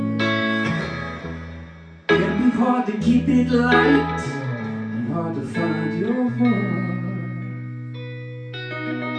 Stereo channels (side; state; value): both; identical; correlation 1.00